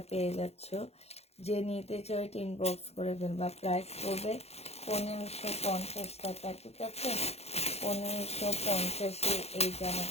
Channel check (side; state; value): right; late; 0.30 ms